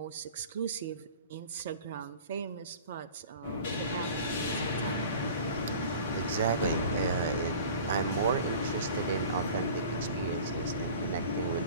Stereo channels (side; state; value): both; inverted; correlation -0.42